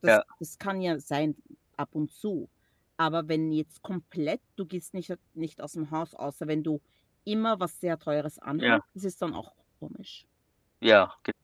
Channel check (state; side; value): identical; both; correlation 1.00